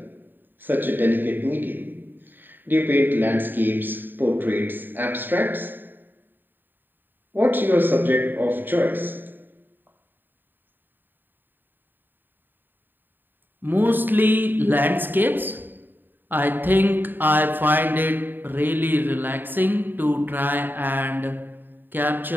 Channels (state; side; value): late; left; 0.093 ms